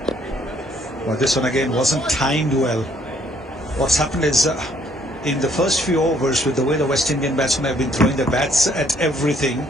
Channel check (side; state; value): both; normal; correlation 0.65